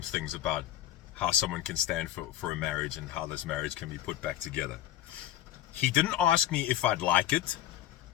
things about how someone can stand for a marriage and how this marriage can be put back together. He didn't ask me if I'd like it.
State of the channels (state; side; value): quieter; right; 12.9 dB